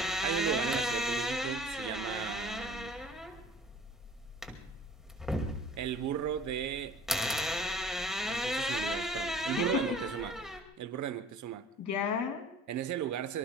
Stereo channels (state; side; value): normal; both; correlation 0.47